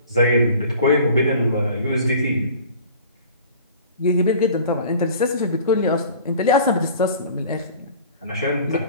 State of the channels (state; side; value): inverted; both; correlation -0.45